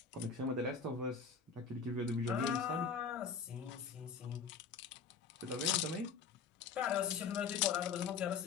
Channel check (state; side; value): quieter; right; 5.8 dB